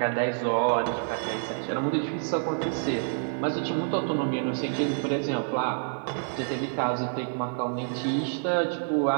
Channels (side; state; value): left; silent; 57 dB below the other